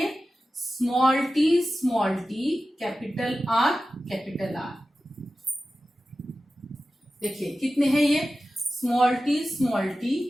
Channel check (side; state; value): both; normal; correlation 0.94